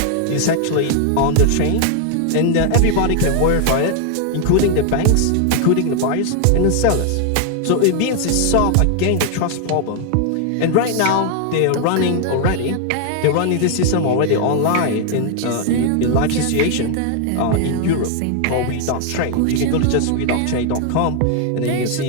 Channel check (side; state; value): both; different; correlation 0.00